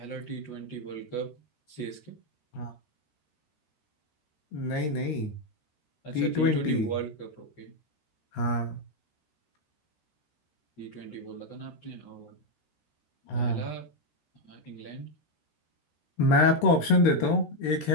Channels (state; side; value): late; right; 13 ms